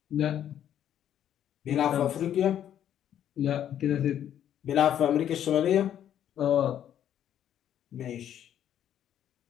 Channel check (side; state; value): right; quieter; 10.3 dB